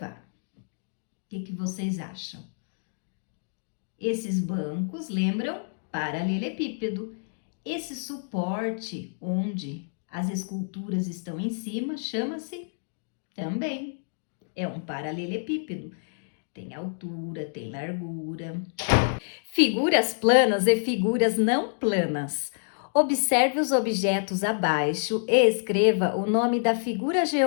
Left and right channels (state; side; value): silent; right; digital silence